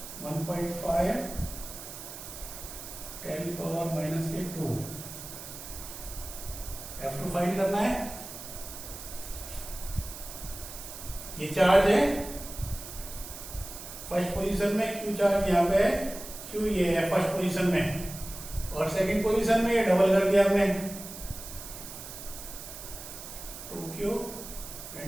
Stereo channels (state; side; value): noise; right; hiss, 11 dB below the sound